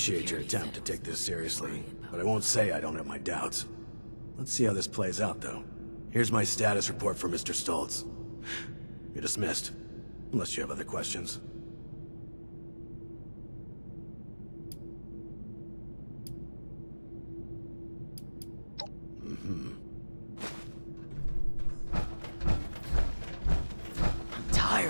your attempt to take this seriously, but I won't say I don't have my doubts. Let's see how this plays out, though. Here's my status report for Mr. Stolz. You're dismissed, unless you have other questions.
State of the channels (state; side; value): inverted; both; correlation -1.00